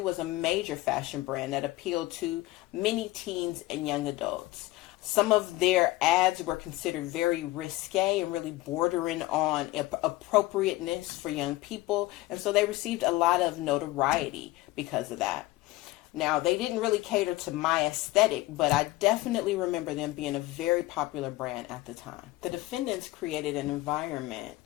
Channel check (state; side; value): quieter; right; 18.5 dB